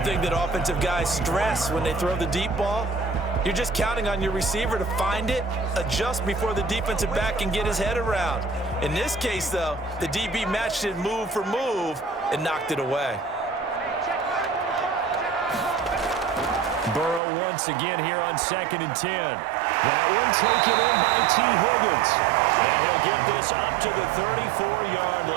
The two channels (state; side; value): drops out; left; at 17.2 s